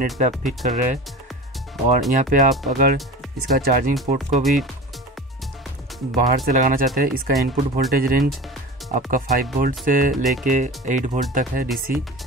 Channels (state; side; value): normal; both; correlation 0.34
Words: पे आप फिट कर रहे हैं। और यहाँ पे आप अगर इसका चार्जिंग पोर्ट को भी बाहर से लगाना चाहते हैं, इसका इनपुट वोल्टेज रेंज आपका 5 वोल्ट से लेके 8 वोल्ट तक है DC।